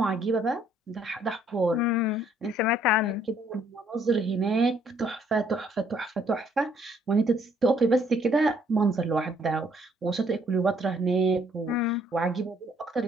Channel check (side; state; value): both; normal; correlation 0.65